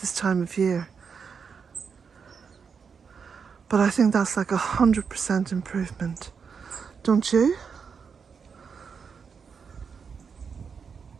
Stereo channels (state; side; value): quieter; left; 6.1 dB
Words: time of year. But I think that's like 100% improvement, don't you?